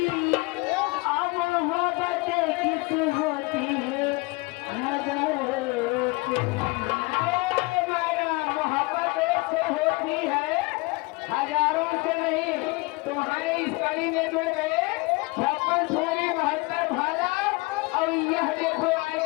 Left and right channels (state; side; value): quieter; right; 25.7 dB